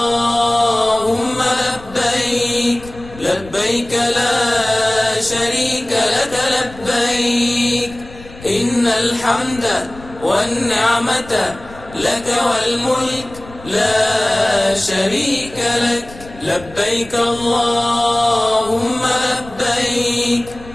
لبيك، لبيك لا شريك لك لبيك، إن الحمد والنعمة لك والملك لا شريك لك. لبيك اللهم لبيك،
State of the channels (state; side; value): noise; left; rumble, 19 dB below the sound